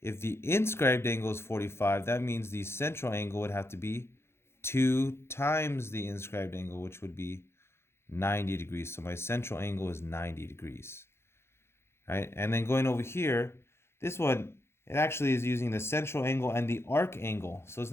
If the inscribed angle is 45, that means the central angle would have to be 2 times the inscribed angle, which would be 90 degrees. So my central angle is 90 degrees. Right? And then going over here, this one, it actually is using the central angle and the arc angle. So it's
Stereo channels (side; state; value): right; late; 0.12 ms